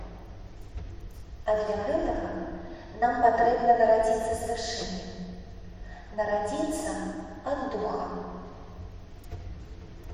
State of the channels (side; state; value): both; identical; correlation 1.00